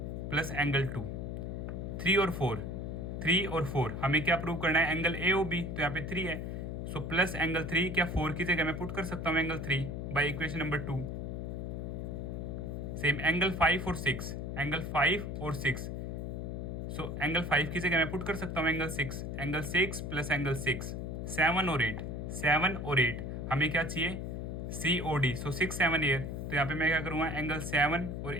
प्लस एंगल 2, 3 और 4, 3 और 4 हमें क्या प्रूव करना है, एंगल ए ओ बी, तो यहाँ पे 3 है। सो प्लस एंगल 3 क्या 4 की जगह मैं पुट कर सकता हूँ angle 3 by equation number 2। Same angle 5 और 6, एंगल 5 और 6, सो एंगल 5 की जगह मैं पुट कर सकता हूँ एंगल 6, एंगल 6 प्लस एंगल 6, 7 और 8, 7 और 8 हमें क्या चाहिए सी ओ डी। सो 6 7 एयर, तो यहाँ पे मैं क्या करूँगा एंगल 7 और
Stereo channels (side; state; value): left; noise; hum, 5 dB below the sound